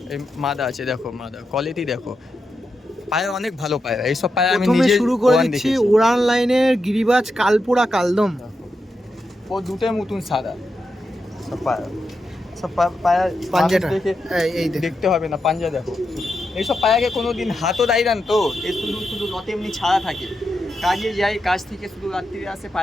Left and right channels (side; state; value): both; normal; correlation 0.86